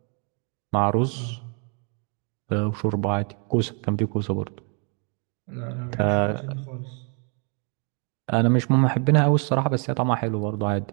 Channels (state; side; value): quieter; left; 37.6 dB